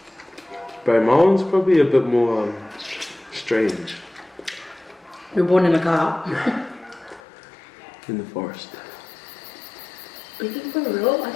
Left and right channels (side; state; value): right; drops out; at 7.2 s